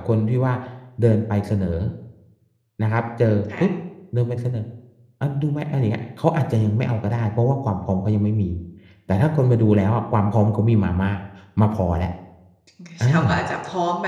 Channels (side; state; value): both; identical; correlation 1.00